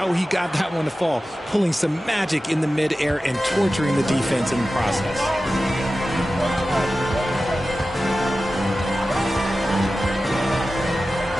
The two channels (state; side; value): normal; both; correlation 0.94